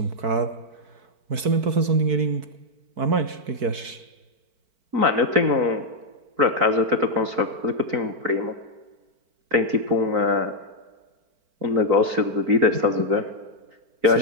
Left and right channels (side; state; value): left; late; 4.6 ms